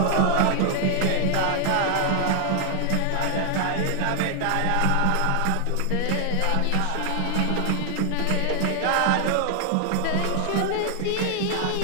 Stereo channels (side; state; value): both; different; correlation 0.00